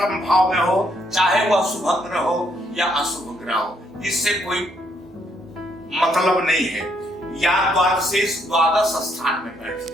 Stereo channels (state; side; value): normal; both; correlation 0.72